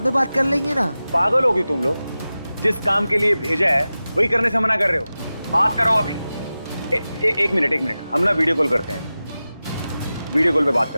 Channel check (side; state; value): both; inverted; correlation -0.95